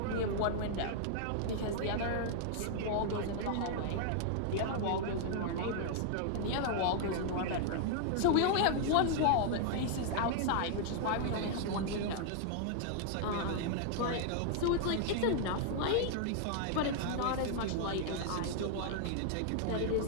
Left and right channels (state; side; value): different; both; correlation 0.00